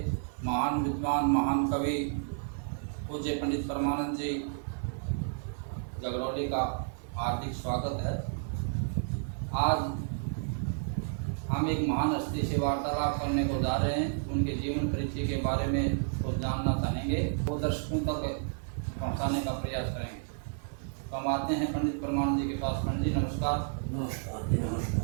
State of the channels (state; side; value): silent; left; digital silence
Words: महान विद्वान, महान कवि पूज्य पंडित परमानंद जी गगरौली का हार्दिक स्वागत है। आज हम एक महान हस्ती से वार्तालाप करने को जा रहे हैं। उनके जीवन परिचय के बारे में कुछ जानना चाहेंगे, वो दर्शकों तक पहुंचाने का प्रयास करेंगे। तो हम आते हैं पंडित परमानंद जी के पास। पंडित जी नमस्कार। नमस्कार।